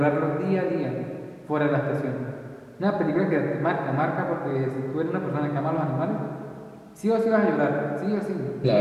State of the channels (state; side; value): identical; both; correlation 1.00